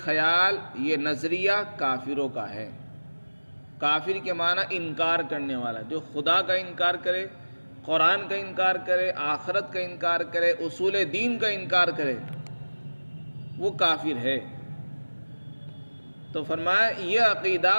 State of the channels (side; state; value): both; inverted; correlation -1.00